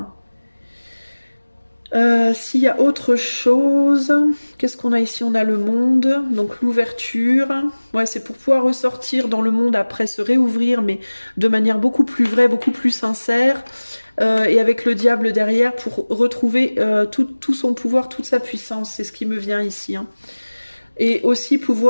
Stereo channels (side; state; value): both; inverted; correlation -1.00